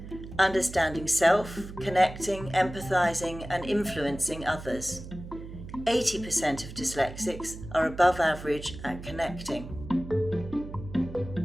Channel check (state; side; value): noise; right; hum, 12 dB below the sound